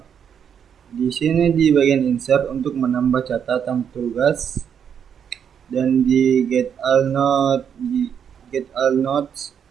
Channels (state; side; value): quieter; left; 8.0 dB